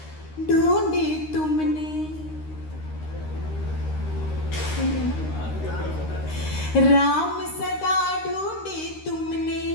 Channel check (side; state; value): right; late; 13 ms